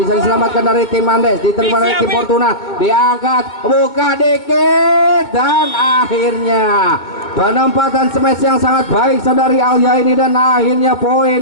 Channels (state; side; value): late; right; 2.1 ms